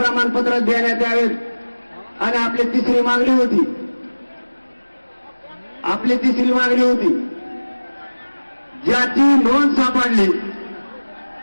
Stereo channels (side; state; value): both; inverted; correlation -1.00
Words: देण्यात यावेत. आणि आपली तिसरी मागणी होती, ज्याची नोंद सापडली